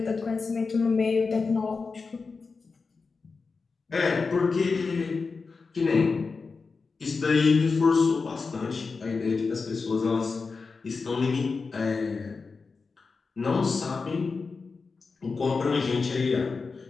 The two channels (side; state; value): right; quieter; 4.5 dB